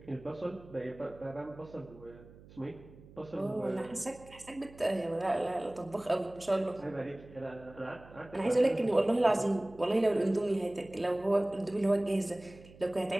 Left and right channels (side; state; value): right; noise; hum, 21 dB below the sound